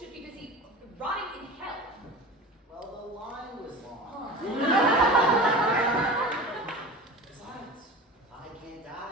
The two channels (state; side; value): normal; both; correlation 0.34